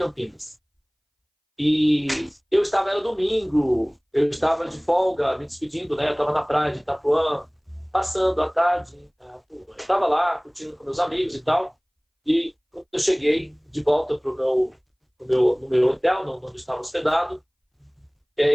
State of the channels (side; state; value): both; identical; correlation 1.00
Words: E era domingo, eu estava de folga, me despedindo, né? Eu estava na praia de Itapuã, passando a tarde, eu estava lá, curtindo com meus amigos e tal, e quando eu cheguei de volta no meu hotel, onde eu estava hospedado,